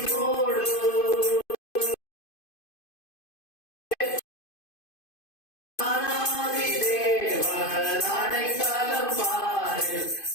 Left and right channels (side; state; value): right; late; 2.5 ms